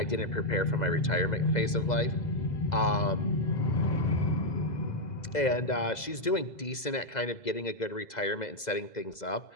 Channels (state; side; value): late; right; 2.0 ms